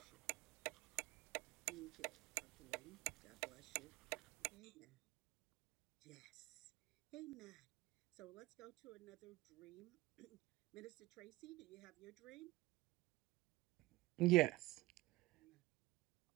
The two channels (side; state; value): left; quieter; 19.6 dB